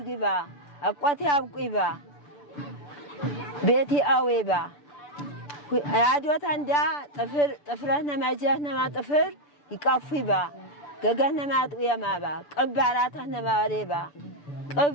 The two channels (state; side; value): late; right; 6.9 ms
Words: አቋቴ አብቁይባ ቤቲ አዌባ አዶተንዳ ጥፍረነ መጀነማ ጥፍር ይቃፉይባ ገገነማ ያጥየማባ ቅባራተነ ማሬባ ቅብ